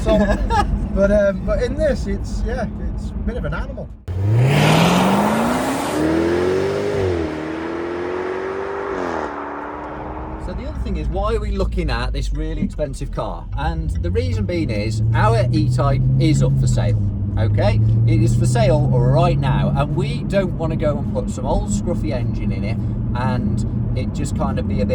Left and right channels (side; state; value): both; identical; correlation 1.00